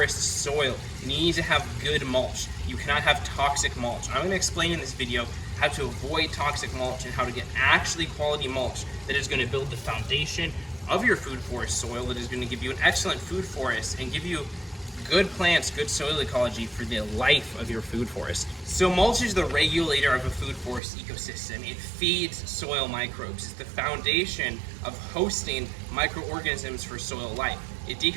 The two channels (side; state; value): left; drops out; at 20.8 s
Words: soil. You need to have good mulch. You cannot have toxic mulch. I'm gonna explain in this video how to avoid toxic mulch and how to get actually quality mulch that is gonna build the foundation of your food forest soil, that is gonna give you an excellent food forest and give you good plants, good soil ecology for the life of your food forest. So mulch is the regulator of a food forest ecosystem. It feeds soil microbes. It's the foundation of hosting microorganisms for soil life. It